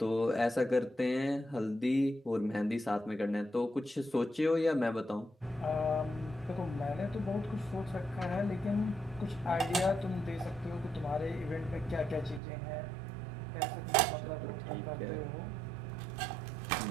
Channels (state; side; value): drops out; left; at 12.4 s